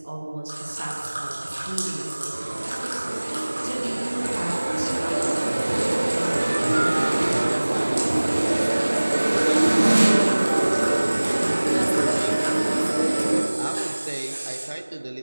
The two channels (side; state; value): both; inverted; correlation -1.00